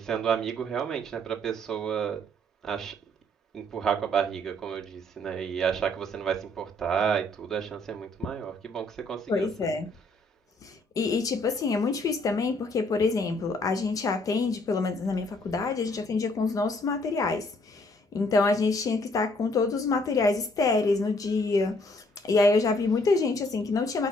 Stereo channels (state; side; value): normal; both; correlation 0.65